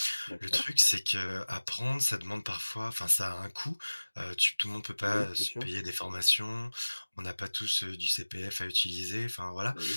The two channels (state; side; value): inverted; both; correlation -1.00